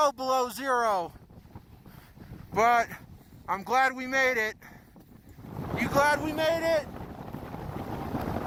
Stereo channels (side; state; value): both; identical; correlation 1.00